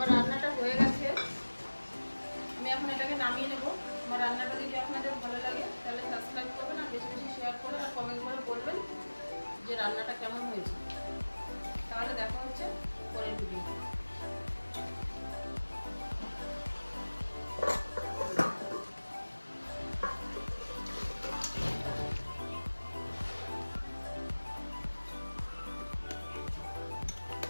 রান্নাটা হয়ে গেছে, আমি এখন এটাকে নামিয়ে নেব। আমার রান্নাটা যদি আপনাদের ভালো লাগে তাহলে সাবস্ক্রাইব করবেন, আর বেশি বেশি শেয়ার করবেন, আর কমেন্ট করে বলবেন যে রান্নাটা কেমন হয়েছে। তাহলে দেখা হচ্ছে পরের ভিডিও।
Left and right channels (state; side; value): inverted; both; correlation -1.00